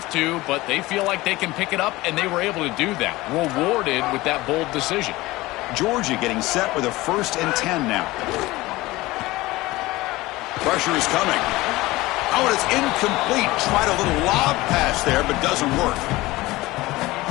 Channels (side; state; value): right; quieter; 19.5 dB